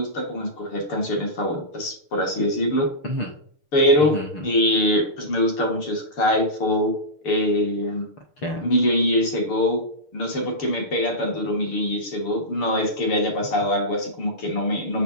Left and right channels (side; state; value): right; late; 6.6 ms